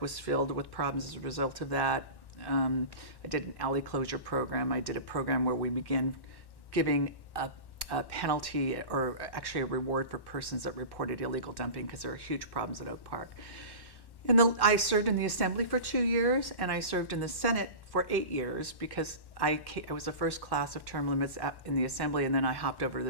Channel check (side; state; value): right; late; 1.1 ms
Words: was filled with problems as a result of that. I did an alley closure program. I did a program where we began giving a penalty or actually a reward for persons that reported illegal dumping because there are huge problems at Oak Park. I served in the Assembly for 2 years, and I served in the Senate for 8 years because I was the first class of term limits in the Assembly, and then I hopped over to